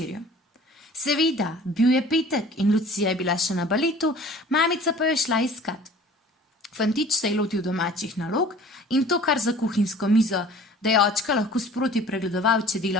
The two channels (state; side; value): normal; both; correlation 0.47